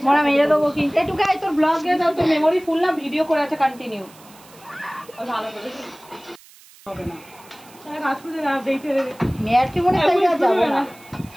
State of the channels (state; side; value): noise; right; hiss, 24 dB below the sound